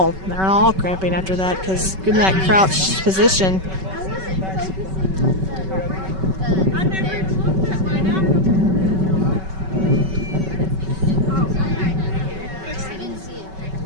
cramping after that, because in that crouched position.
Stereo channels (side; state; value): left; late; 5.3 ms